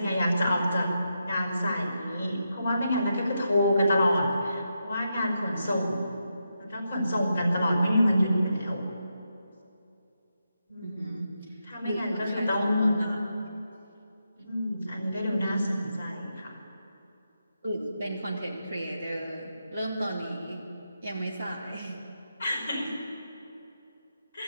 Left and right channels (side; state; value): both; inverted; correlation -0.85